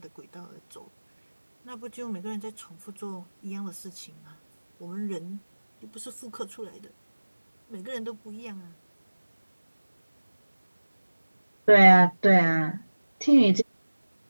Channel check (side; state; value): both; inverted; correlation -1.00